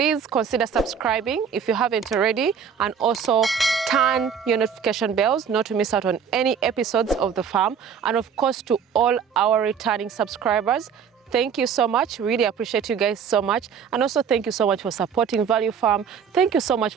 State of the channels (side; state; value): left; quieter; 7.2 dB